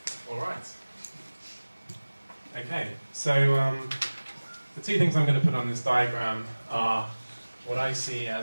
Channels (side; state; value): both; inverted; correlation -1.00